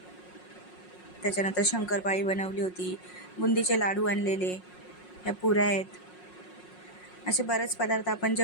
त्याच्यानंतर शंकरपाळी बनवली होती, बुंदीचे लाडू आणलेले, ह्या पुऱ्या आहेत. असे बरेच पदार्थ आपण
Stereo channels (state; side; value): late; right; 5.5 ms